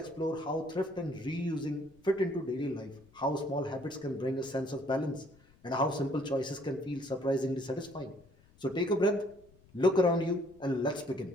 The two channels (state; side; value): noise; left; rumble, 28 dB below the sound